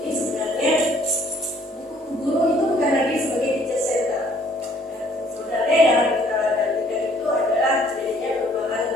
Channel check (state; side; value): normal; both; correlation 0.61